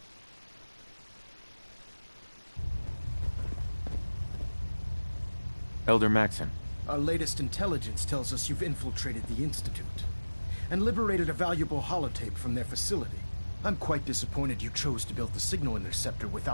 Elder Maxon. Our latest intelligence tells us you've infiltrated the Institute and liberated a valuable holotape from their facility. I'm quite disappointed you chose to build the signal interceptor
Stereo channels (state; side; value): inverted; both; correlation -1.00